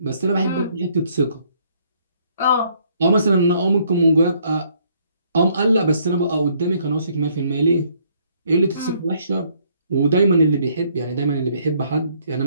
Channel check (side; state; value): both; inverted; correlation -0.66